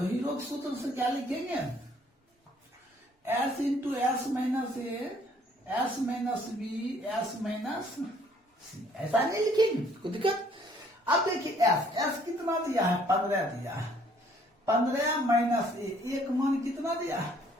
के सूत्र से क्या लिखेंगे, एस इंटू एस माइनस ए, S minus B, S minus c. ऐसा नहीं लिखेंगे, कोई दिक्कत। अब देखिए एस कितना दिया है 15 दिया है, 15 माइनस ए, एक मान कितना दिया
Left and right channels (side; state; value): both; normal; correlation 0.61